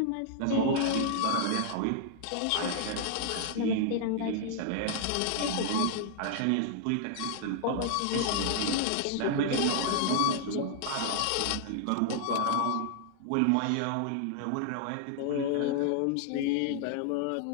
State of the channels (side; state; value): both; different; correlation -0.01